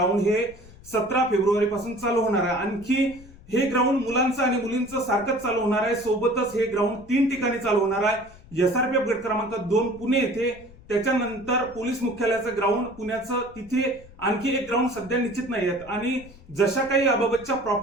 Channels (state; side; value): noise; left; rumble, 21 dB below the sound